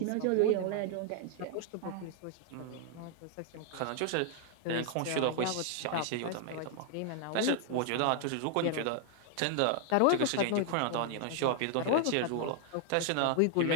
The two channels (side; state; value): both; different; correlation 0.00